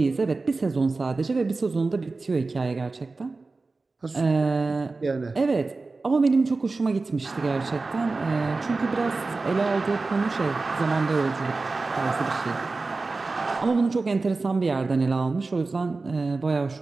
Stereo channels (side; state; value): left; quieter; 3.7 dB